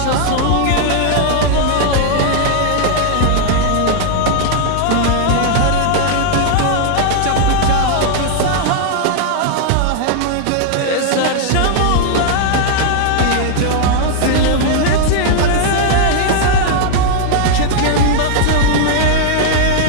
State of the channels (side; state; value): both; different; correlation 0.00